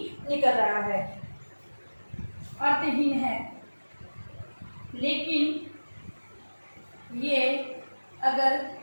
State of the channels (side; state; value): both; inverted; correlation -1.00